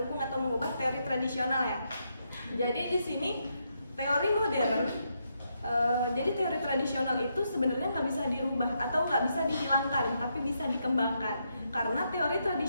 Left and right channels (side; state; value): both; inverted; correlation -0.80